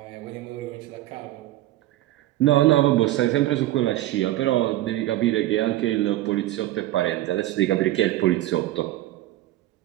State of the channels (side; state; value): left; quieter; 15.4 dB